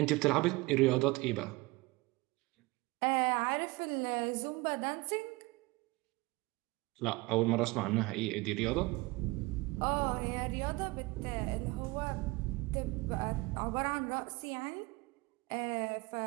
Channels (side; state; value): left; quieter; 22.7 dB